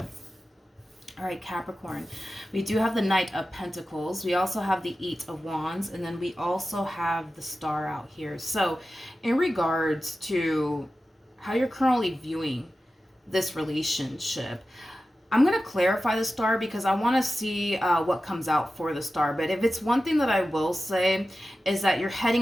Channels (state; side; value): normal; both; correlation 0.94